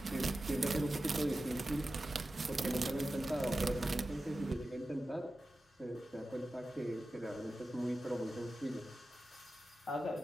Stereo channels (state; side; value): normal; both; correlation 0.94